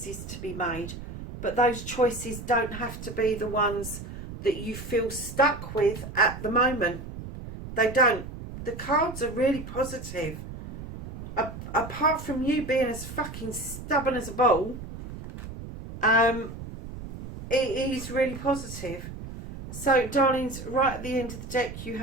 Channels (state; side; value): noise; right; rumble, 11 dB below the sound